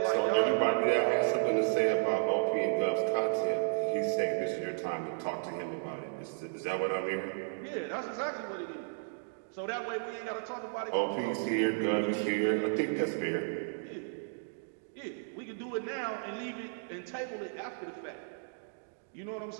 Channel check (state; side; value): silent; left; digital silence